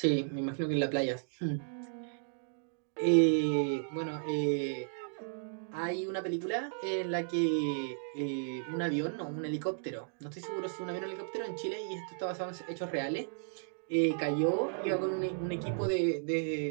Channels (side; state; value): left; silent; digital silence